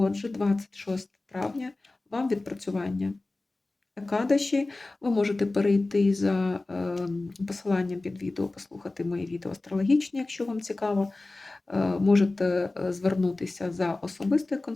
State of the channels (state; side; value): quieter; right; 3.1 dB